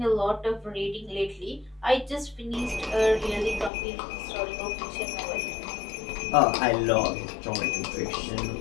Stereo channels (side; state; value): right; drops out; at 3.7 s